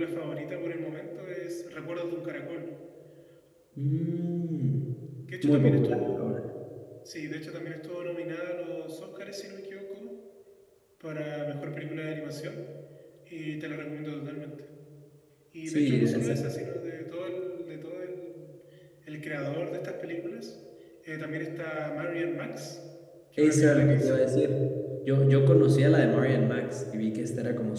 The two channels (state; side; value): identical; both; correlation 1.00